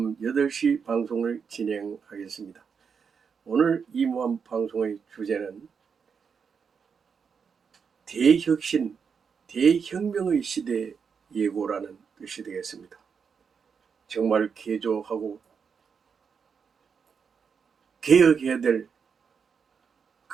8시 방송을 진행하겠습니다. 오늘 이무한 방송의 주제는 대혁신, 대혁명의 시대 예고라는 것이 되겠습니다. 정말 개조하고 개혁해야 될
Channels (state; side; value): quieter; left; 6.3 dB